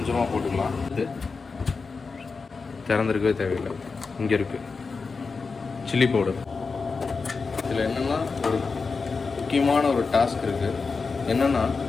போட்டுக்கலாம். திறந்துருக்கவே தேவையில்லை. இங்கே இருக்குது சில்லி பவுடர். இதில் என்னென்னா ஒரு முக்கியமான ஒரு டாஸ்க் இருக்குது. என்னென்னா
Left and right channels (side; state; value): right; quieter; 4.6 dB